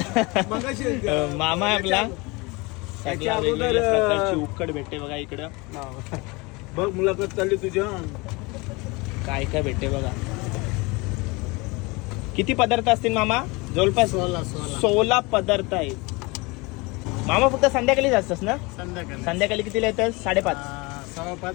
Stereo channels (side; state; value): right; quieter; 25.7 dB